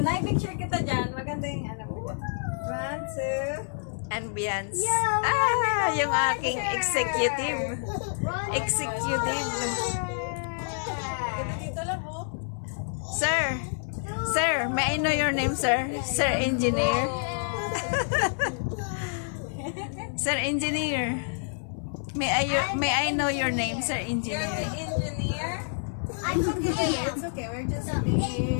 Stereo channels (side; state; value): right; silent; 59 dB below the other